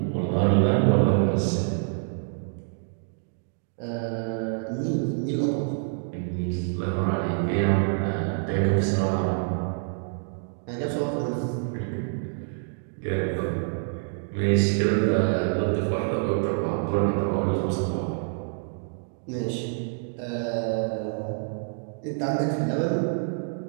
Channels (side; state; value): left; silent; digital silence